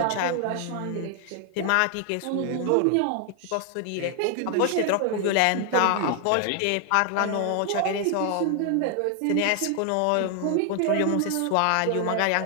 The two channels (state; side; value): different; both; correlation 0.00